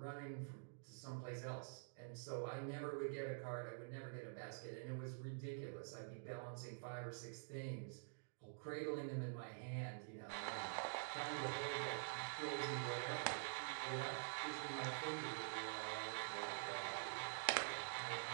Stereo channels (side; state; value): left; silent; digital silence